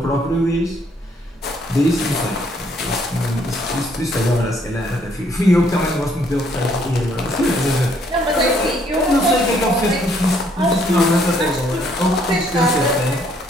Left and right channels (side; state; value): both; normal; correlation 0.66